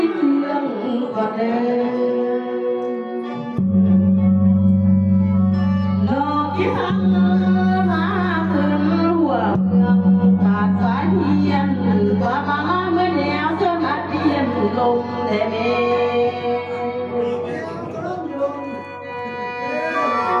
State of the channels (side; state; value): both; identical; correlation 1.00